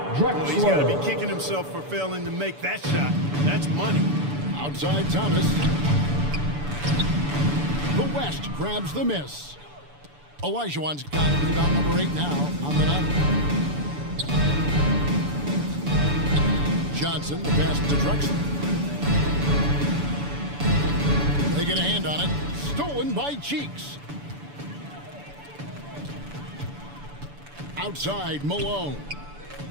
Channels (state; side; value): late; left; 6.9 ms